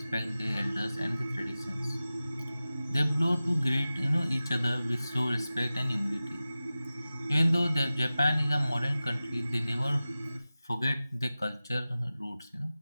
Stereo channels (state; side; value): inverted; both; correlation -0.96